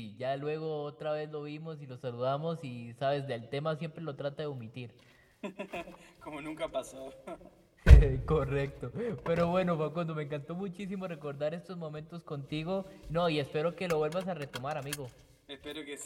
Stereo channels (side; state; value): both; identical; correlation 1.00